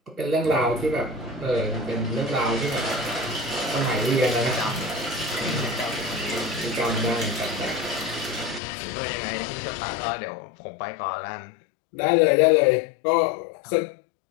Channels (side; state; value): right; drops out; at 8.6 s